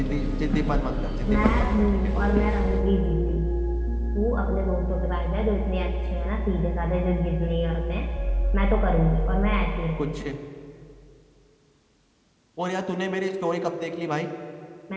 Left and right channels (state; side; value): identical; both; correlation 1.00